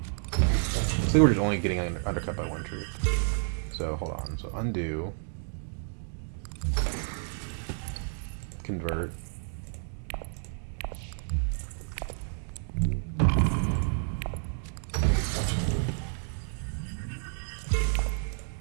I think we're just only getting undercut by 1 troop. So, hold on. So, undo. Convert.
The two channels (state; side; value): silent; left; 58 dB below the other